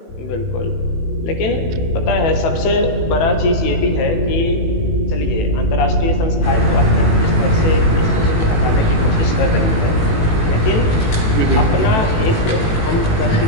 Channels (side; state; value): right; late; 18 ms